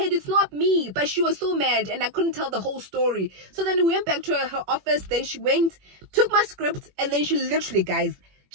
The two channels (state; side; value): late; left; 21 ms